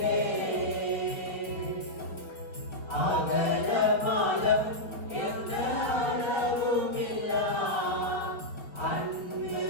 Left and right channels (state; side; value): late; right; 4.5 ms